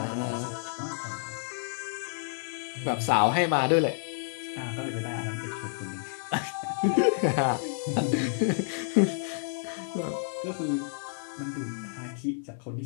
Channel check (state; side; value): silent; right; 58 dB below the other